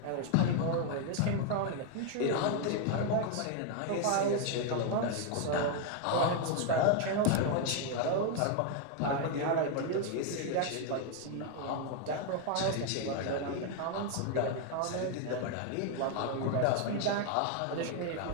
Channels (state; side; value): different; both; correlation 0.01